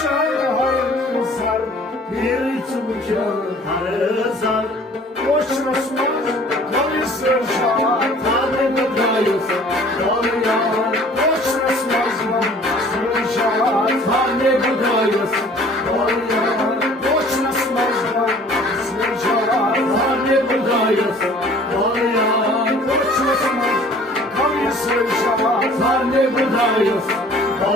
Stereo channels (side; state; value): both; normal; correlation 0.51